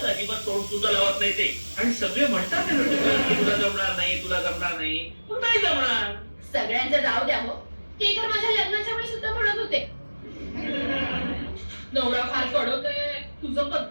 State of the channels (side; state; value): both; inverted; correlation -1.00